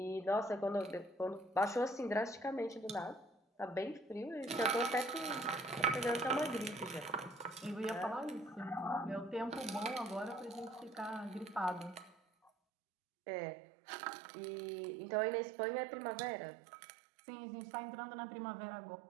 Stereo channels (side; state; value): left; drops out; at 12.5 s